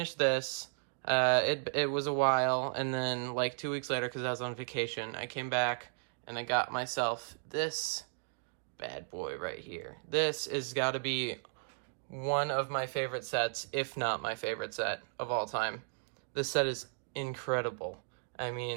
this, it was a while, and then like 2 weeks later, because I was on vacation, I came back and I got myself this bad boy right here. This has got to be one of my favorite sets, if not my favorite set of all time. This set is incredible. I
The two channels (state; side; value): silent; left; digital silence